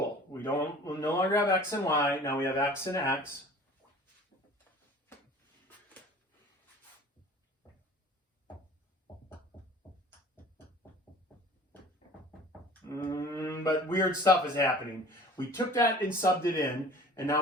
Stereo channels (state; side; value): normal; both; correlation 0.46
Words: We'll no longer have x and y, now we have x and x. But weird stuff is happening. We took that and subbed it in, and